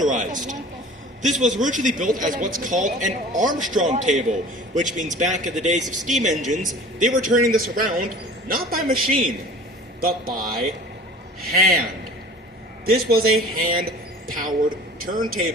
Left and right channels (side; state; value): both; normal; correlation 0.43